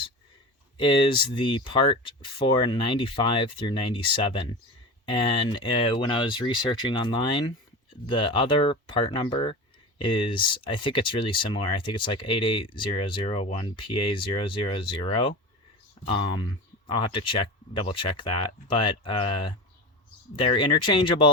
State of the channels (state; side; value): normal; both; correlation 0.29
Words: is the part for 95 through 97. And when I was researching online, the other part number is, I think it's really similar. I think it's like 88001PA000. I'll have to double check that. But they're